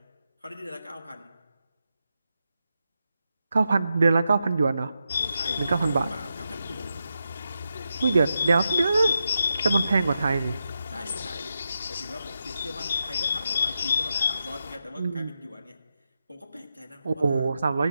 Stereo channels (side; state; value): both; inverted; correlation -0.87